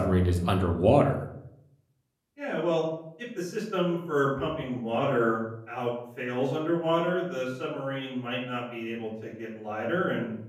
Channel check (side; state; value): both; identical; correlation 1.00